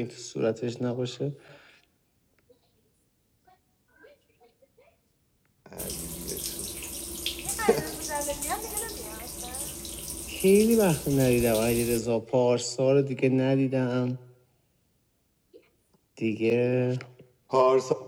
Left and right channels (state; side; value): identical; both; correlation 1.00